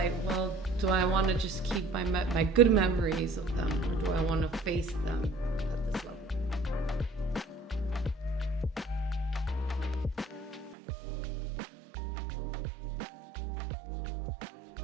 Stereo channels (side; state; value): left; drops out; at 10.8 s